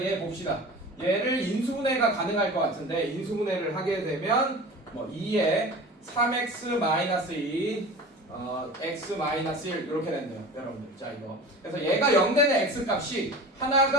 얘 봅시다. 얘를 인수분해가 가능할 것 같은데 인수분해를 하게 되면 뭐 2에 3x 마이너스 2 x 마이너스 1 이렇게 된대요 여러분들. 자 이거 그래서 얘가 0 되는 x 값이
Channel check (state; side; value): normal; both; correlation 0.36